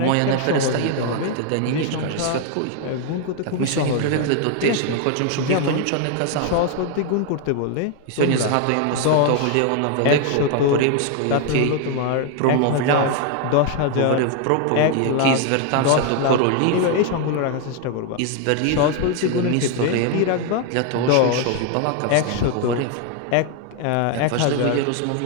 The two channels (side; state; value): both; different; correlation 0.01